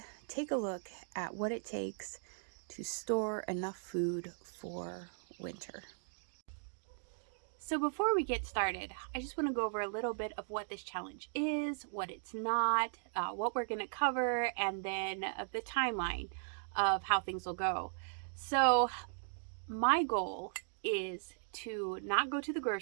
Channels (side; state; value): left; silent; digital silence